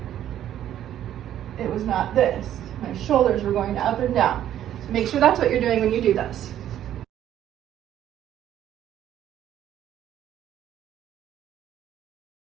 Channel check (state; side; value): quieter; left; 11.3 dB